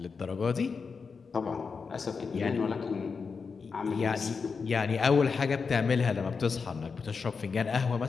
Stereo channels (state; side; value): quieter; right; 5.2 dB